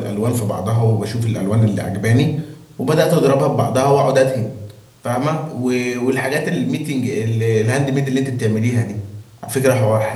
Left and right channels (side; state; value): both; identical; correlation 1.00